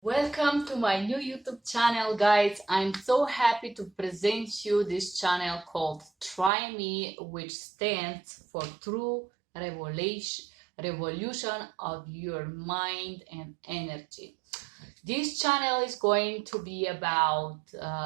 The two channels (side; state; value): left; drops out; at 6.5 s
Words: Welcome to my new YouTube channel, guys. I'm so happy to present you this channel called Try Me, which stands for True Revolution of Your Mind and Energy. This channel is going to be about